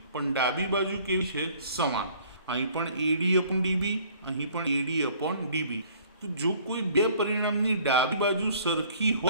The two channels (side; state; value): both; inverted; correlation -0.56